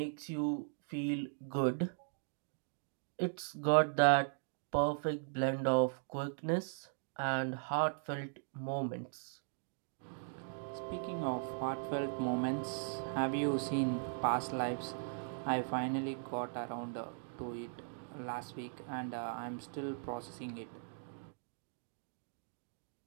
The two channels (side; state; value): left; silent; digital silence